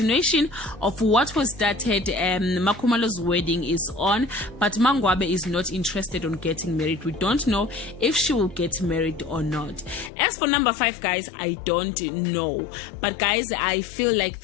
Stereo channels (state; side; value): drops out; right; at 10.1 s